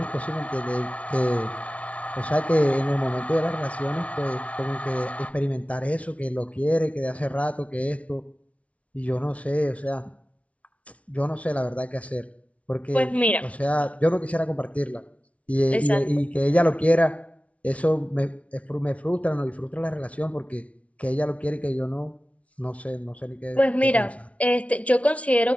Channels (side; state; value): right; late; 0.065 ms